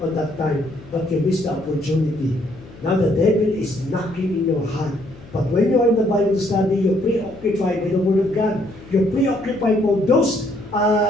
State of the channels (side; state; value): left; noise; hum, 20 dB below the sound